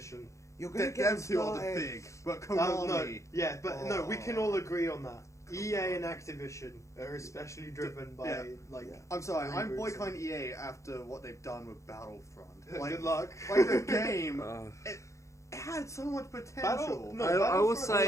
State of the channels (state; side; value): late; right; 0.15 ms